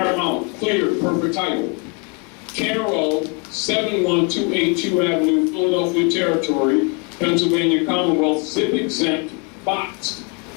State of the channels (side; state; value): right; quieter; 34.9 dB